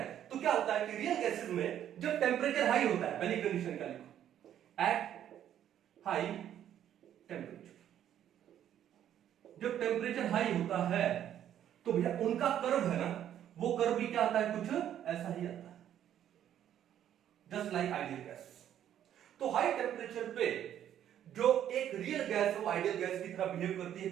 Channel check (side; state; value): left; quieter; 10.6 dB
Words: तो क्या होता है कि रियल गैसेस में जब टेम्परेचर हाई होता है, पहली कंडीशन क्या लिखो, एट हाई टेम्परेचर, जब टेम्परेचर हाई होता है तो भैया उनका कर्व है ना, वो कर्व भी क्या आता है, कुछ ऐसा ही आता है, जस्ट लाइक आइडियल गैस। तो हाई टेम्परेचर पे जो एक रियल गैस है वो आइडियल गैस की तरह बिहेव करती है,